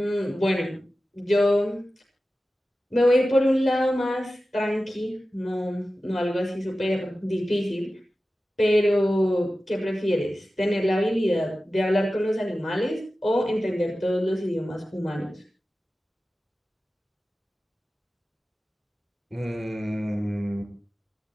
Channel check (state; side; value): normal; both; correlation 0.95